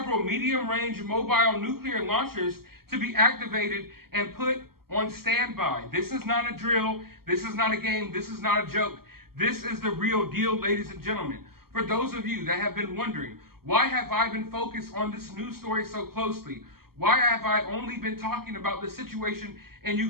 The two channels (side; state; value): left; late; 0.94 ms